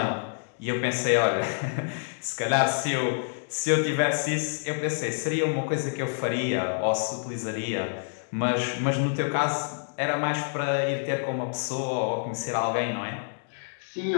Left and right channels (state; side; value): silent; right; digital silence